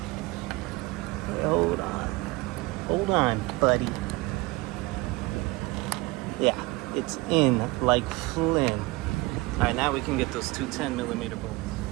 Hey, hold on. Hold on, buddy. Yeah, it's in like Flynn. All right, now we can get those two 10mm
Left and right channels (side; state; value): left; quieter; 22.6 dB